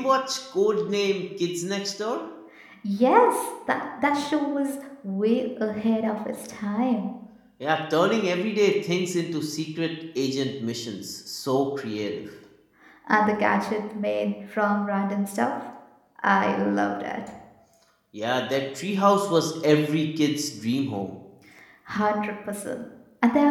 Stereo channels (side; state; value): both; identical; correlation 1.00